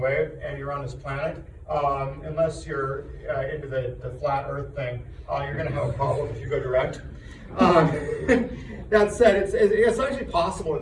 and you're on this planet, unless you're into the flat Earth thing, you're going to have a problem if you go direct. That said, it's actually possible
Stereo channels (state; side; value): identical; both; correlation 1.00